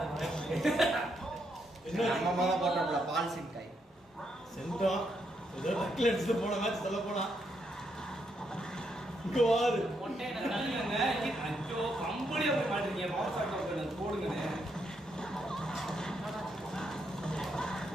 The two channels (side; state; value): both; normal; correlation 0.78